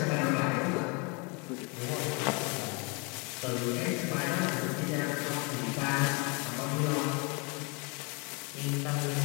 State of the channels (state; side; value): quieter; right; 30.0 dB